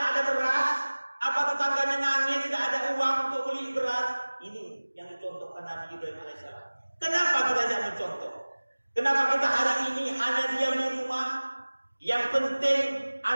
ada beras? Apa tetangganya nangis tidak ada uang untuk beli beras? Ini yang dicontohkan Nabi Ibrahim alaihissalam. Kenapa kita tidak mencontoh? Kenapa kita hari ini hanya diam di rumah? Yang penting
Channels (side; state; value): both; inverted; correlation -1.00